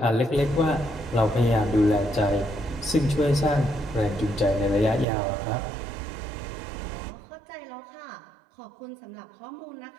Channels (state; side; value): drops out; left; at 5.1 s